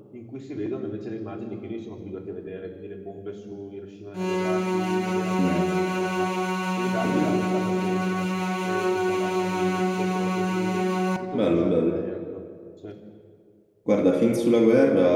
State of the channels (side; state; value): both; identical; correlation 1.00